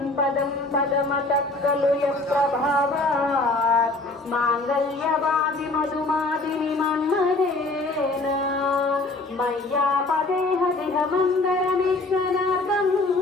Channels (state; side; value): quieter; right; 3.1 dB